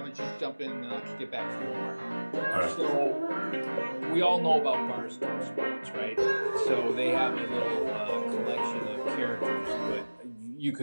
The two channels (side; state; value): both; inverted; correlation -1.00